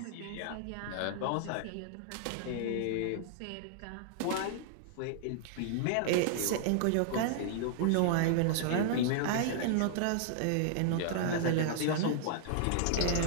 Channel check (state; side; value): different; both; correlation -0.01